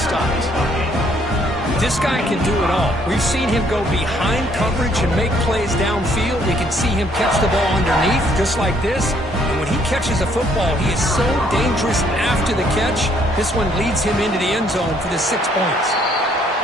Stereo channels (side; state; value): both; normal; correlation 0.66